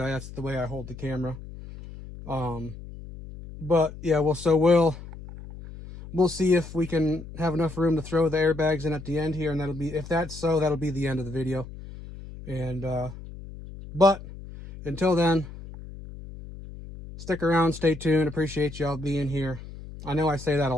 that's the way I hold the camera. But yeah, we'll see if we can have enough room to throw the airbags in at the end here, and if that's so, that'll be the end of the video. And but until then, stick around, stay tuned. Appreciate y'all being here. I know I say that a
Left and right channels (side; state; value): left; noise; hum, 14 dB below the sound